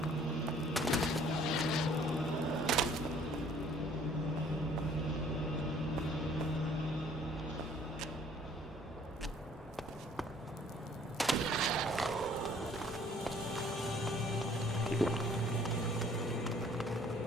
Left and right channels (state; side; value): normal; both; correlation 0.58